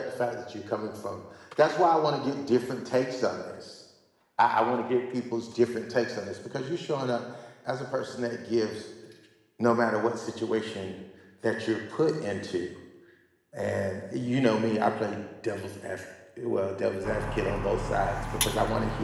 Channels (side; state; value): both; identical; correlation 1.00